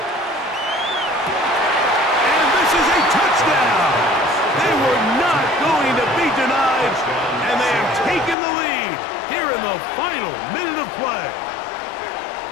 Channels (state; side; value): drops out; right; at 8.3 s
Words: And this is a touchdown! They were not going to be denied, and they have taken the lead here in the final minute of play.